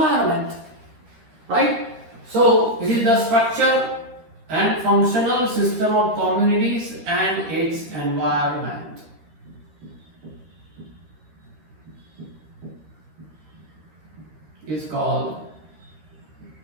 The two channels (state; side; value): late; left; 13 ms